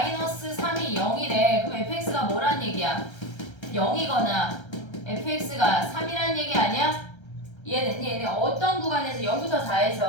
3이 0이래. 그럼 fx가 뭐란 얘기야? 0이거나 fx가 3이란 얘기 아니야? 이해됐니? 얘네 어떤 구간에서 0부터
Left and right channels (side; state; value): right; late; 1.3 ms